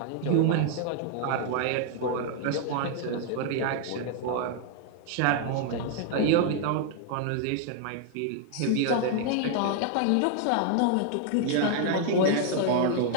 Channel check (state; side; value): different; both; correlation 0.00